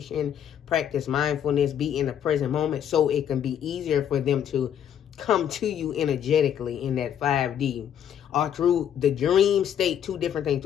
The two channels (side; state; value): right; quieter; 9.4 dB